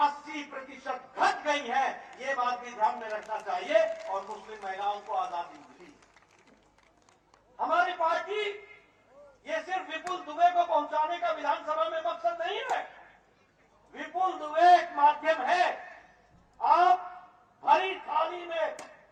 घट गई है। ये बात भी ध्यान में रखना चाहिए। और मुस्लिम महिलाओं को आजादी मिली। हमारी पार्टी ये सिर्फ विपुल दुबे को पहुंचाने का विधानसभा में मकसद नहीं है। विपुल दुबे एक माध्यम है। आप भरी थाली में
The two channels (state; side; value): identical; both; correlation 1.00